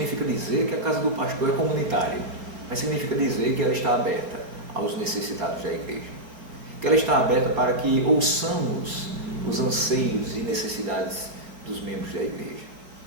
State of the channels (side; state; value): left; late; 4.2 ms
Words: dizer que a casa do pastor é comunitária, mas significa dizer que ela está aberta aos necessitados da igreja, que ela está aberta para que ouçamos os anseios e necessidades dos membros da igreja,